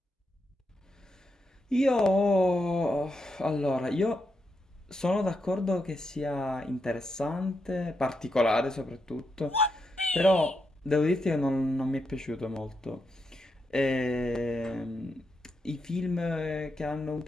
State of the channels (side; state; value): both; normal; correlation 0.83